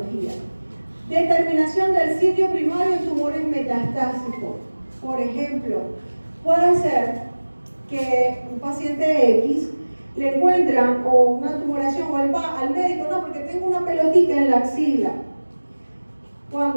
Determinación del sitio primario en tumores metastásicos. Por ejemplo, puede ser que un paciente X le encuentran o una tumoración o él va al médico, no, porque tengo una pelotita en la axila.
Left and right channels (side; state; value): both; inverted; correlation -1.00